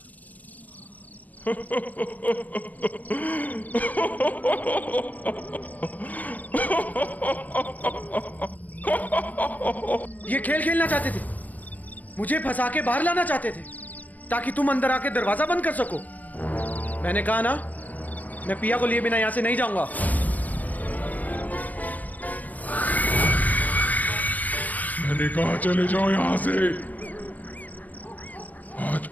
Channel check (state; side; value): late; right; 0.077 ms